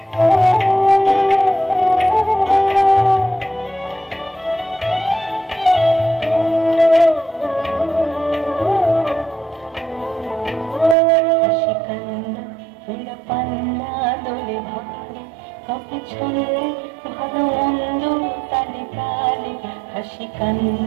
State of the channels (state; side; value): drops out; left; at 11.0 s